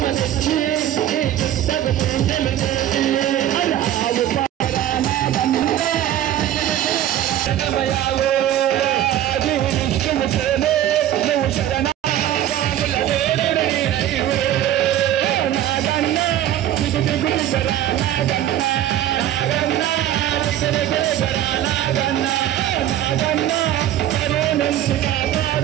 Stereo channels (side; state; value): left; quieter; 12.0 dB